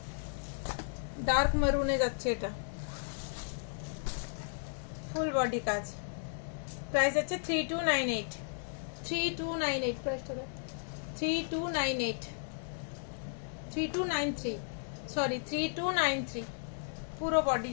ডার্ক মেরুনে যাচ্ছে, এটা ফুল বডি কাজ। প্রাইস আছে 3298 3298। প্রাইসটা 3298 3293, সরি 3293। পুরো বডি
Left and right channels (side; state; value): right; silent; digital silence